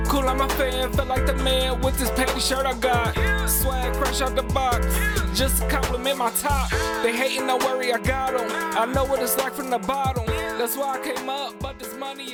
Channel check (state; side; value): identical; both; correlation 1.00